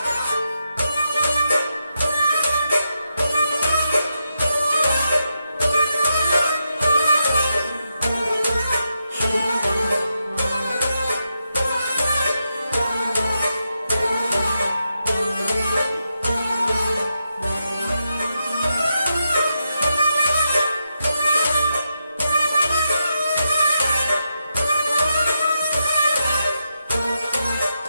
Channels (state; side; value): inverted; both; correlation -0.85